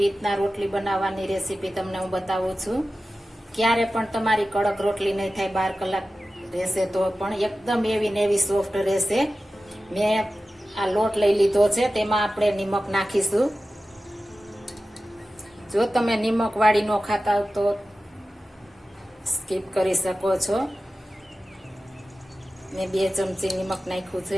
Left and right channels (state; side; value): normal; both; correlation 0.94